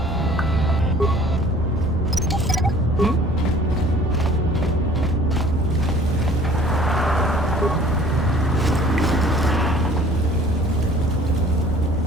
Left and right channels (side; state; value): both; normal; correlation 0.51